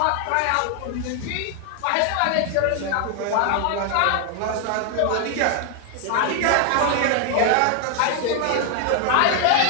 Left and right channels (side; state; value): both; different; correlation 0.00